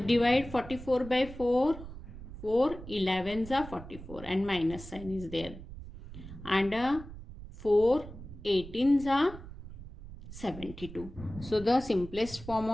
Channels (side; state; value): right; noise; rumble, 14 dB below the sound